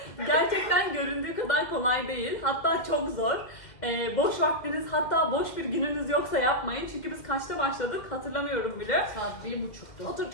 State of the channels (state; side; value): late; right; 2.1 ms